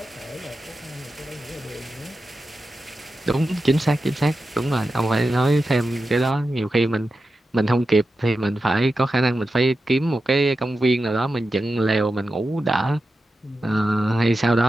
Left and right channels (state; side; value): normal; both; correlation 0.91